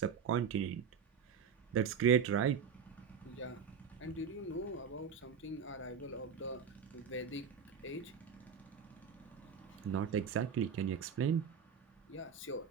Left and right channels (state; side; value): quieter; left; 6.8 dB